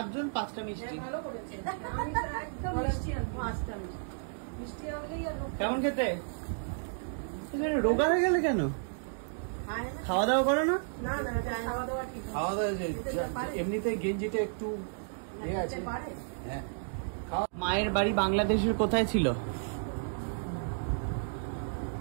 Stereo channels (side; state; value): left; silent; digital silence